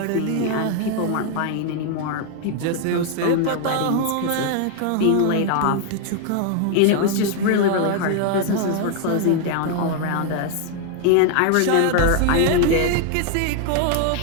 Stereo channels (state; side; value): different; both; correlation 0.00